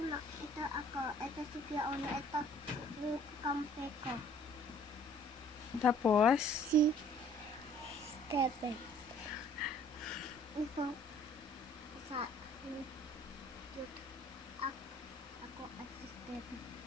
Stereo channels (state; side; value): normal; both; correlation 0.56